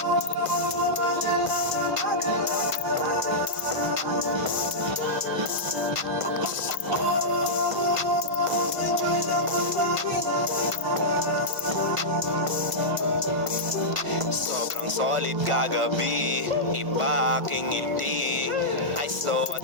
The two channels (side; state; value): left; late; 1.5 ms